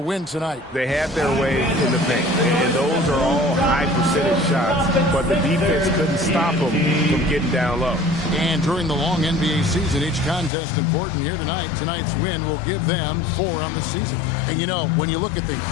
win tonight. They had their way in the paint, and those are all high percentage shots, but the defense couldn't stop them from getting down low. And during the long NBA season, each contest important here tonight. Tonight's win will give them 4 on the season. And you know, when you look at the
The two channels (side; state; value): right; drops out; at 10.5 s